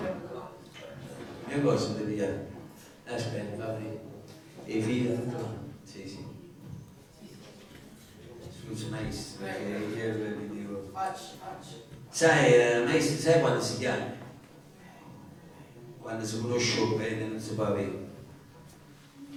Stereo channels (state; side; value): identical; both; correlation 1.00